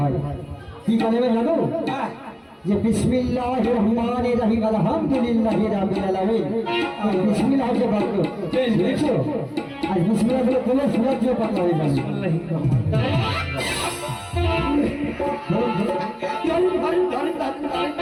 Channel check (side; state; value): both; identical; correlation 1.00